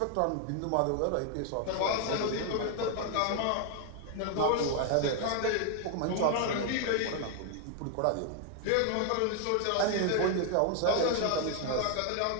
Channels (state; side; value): different; both; correlation 0.00